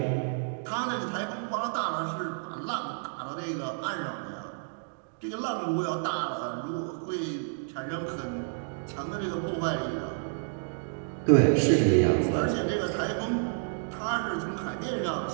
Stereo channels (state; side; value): silent; left; digital silence